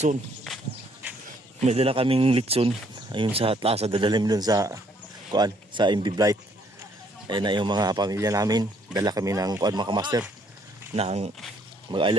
May dala kaming litson. Ayun sa Atlasa, dadalim dun sa MB Blight. Ayun na yung mga pamilya namin. Dala kami ng mga kamaster. Nang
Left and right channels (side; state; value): both; normal; correlation 0.66